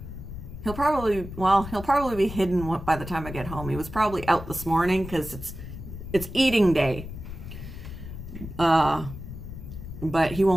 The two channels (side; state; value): left; noise; rumble, 10 dB below the sound